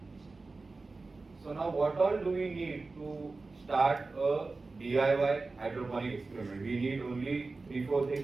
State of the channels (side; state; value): left; quieter; 3.7 dB